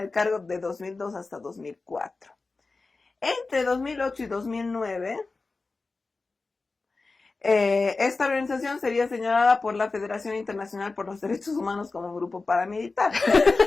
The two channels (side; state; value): right; quieter; 3.8 dB